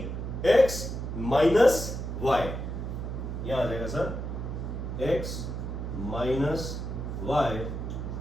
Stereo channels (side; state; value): right; noise; hum, 5 dB below the sound